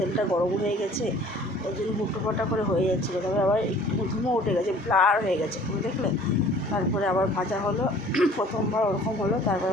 গরম হয়ে গেছে, ওই জন্য হুটোপাটা করে হয়ে যাচ্ছিলো। তারপরে আবার একটু ধুমো উঠে গেছে, ব্লার হয়ে গেছে, তুমি দেখলে। তারপরে আবার ভাজা হলো, প্রথমবার ওরকম হলো, তারপরে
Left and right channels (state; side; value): normal; both; correlation 0.51